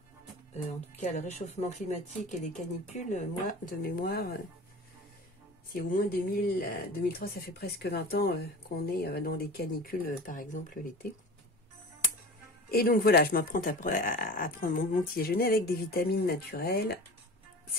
en tout cas le réchauffement climatique et les canicules, moi, de mémoire, c'est au moins 2003, ça fait presque 20 ans qu'on est dans des canicules, par exemple l'été. Et donc voilà, je m'apprête à prendre mon petit déjeuner avec des vitamines naturelles.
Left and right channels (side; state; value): both; normal; correlation 0.36